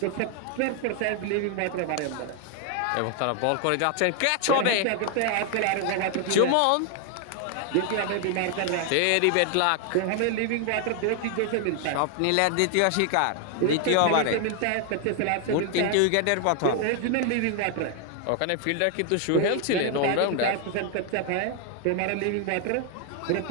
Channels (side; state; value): both; different; correlation 0.00